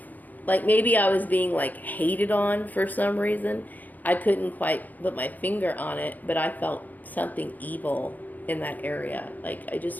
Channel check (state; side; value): late; right; 0.082 ms